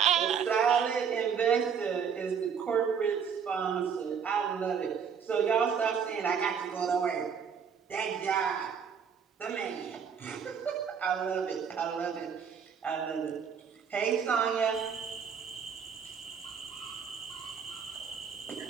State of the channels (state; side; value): quieter; left; 7.0 dB